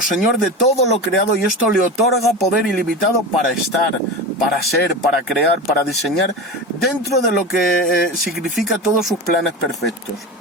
de todo lo creado, y esto le otorga poder ilimitado para estar, para ser, para crear, para diseñar dentro de lo que significa todos sus planes perfectos.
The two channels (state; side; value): normal; both; correlation 0.26